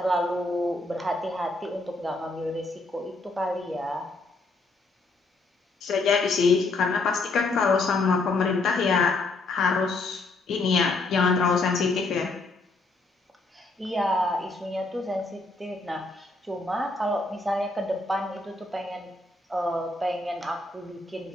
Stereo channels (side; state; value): right; quieter; 3.3 dB